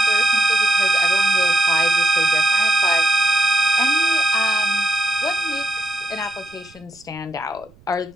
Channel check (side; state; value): right; noise; rumble, 29 dB below the sound